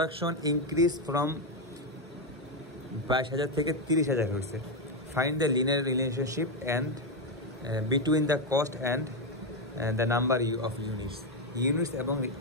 increase from 22,000 থেকে 30,000 হয়েছে find the linear relationship and between the cost and the number of units এবং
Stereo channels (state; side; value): normal; both; correlation 0.07